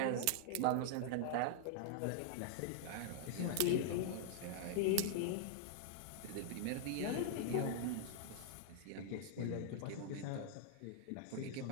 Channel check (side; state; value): both; different; correlation -0.01